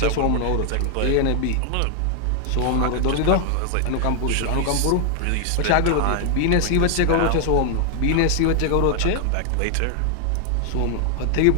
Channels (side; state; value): both; different; correlation 0.00